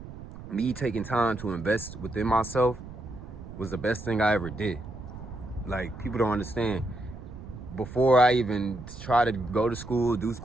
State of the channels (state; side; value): noise; right; rumble, 13 dB below the sound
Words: me taking time to invest within myself was the best thing I ever did. Like, people don't understand. Before I even try to go to school, do